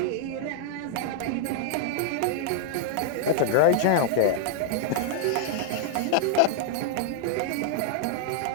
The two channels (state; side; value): different; both; correlation -0.01